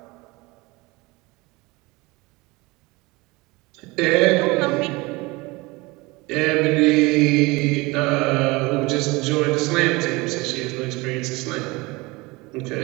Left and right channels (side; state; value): left; quieter; 23.5 dB